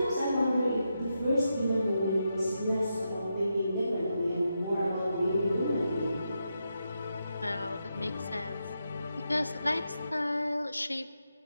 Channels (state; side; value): inverted; both; correlation -0.85